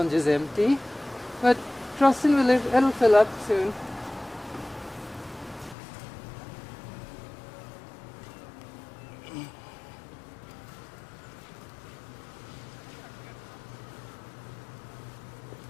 is empty, but trusting it'll fill up soon.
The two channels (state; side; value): drops out; right; at 5.8 s